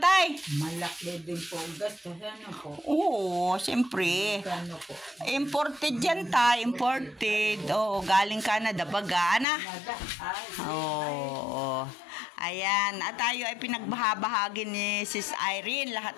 Malaki din po. Gastos po? Oo, siyempre. Po? Imported yan tay. Imported. Galing Canada. Baga, Ayan. At tayo ay pinagbahabahagi ni Sis Irene.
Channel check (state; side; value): drops out; right; at 9.5 s